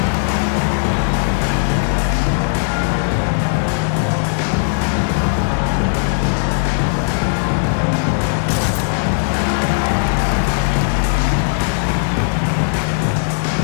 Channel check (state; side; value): silent; right; 68 dB below the other